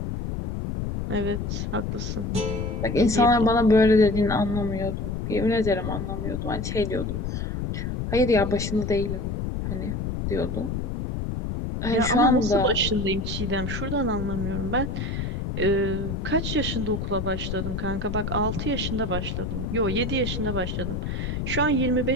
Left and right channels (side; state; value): left; noise; rumble, 3 dB below the sound